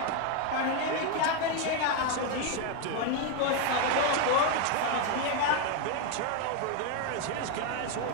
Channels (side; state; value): both; different; correlation 0.01